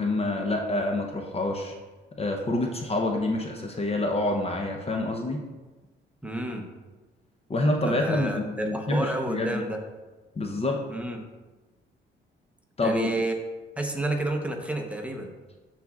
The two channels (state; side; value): normal; both; correlation 0.63